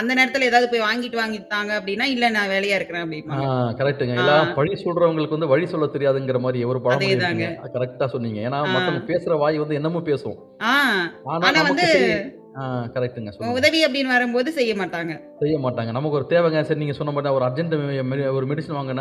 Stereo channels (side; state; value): both; identical; correlation 1.00